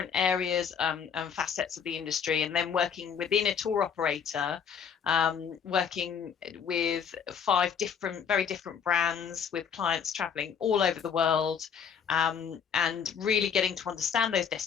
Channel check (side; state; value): right; quieter; 7.2 dB